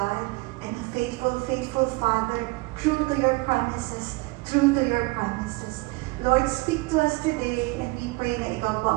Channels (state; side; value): quieter; left; 25.0 dB